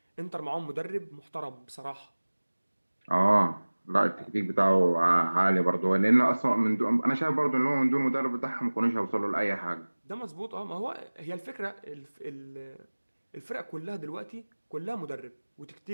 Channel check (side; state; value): both; inverted; correlation -1.00